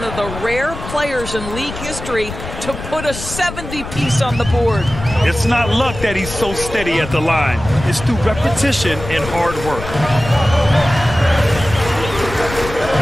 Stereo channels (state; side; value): noise; left; rumble, 10 dB below the sound